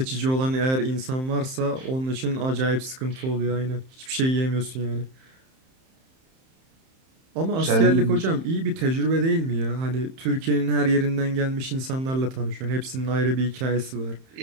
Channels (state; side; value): late; left; 31 ms